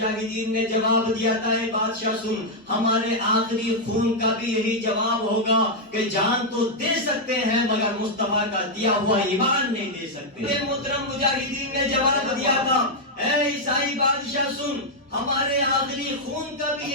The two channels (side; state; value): both; normal; correlation -0.02